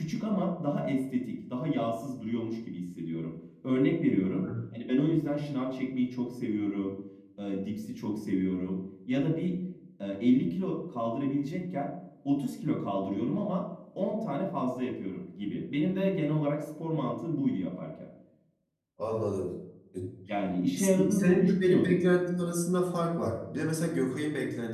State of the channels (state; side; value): identical; both; correlation 1.00